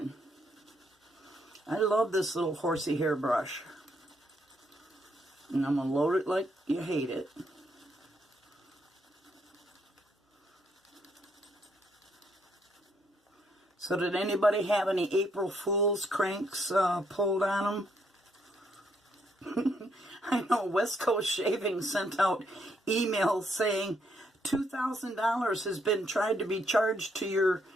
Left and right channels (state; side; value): normal; both; correlation 0.73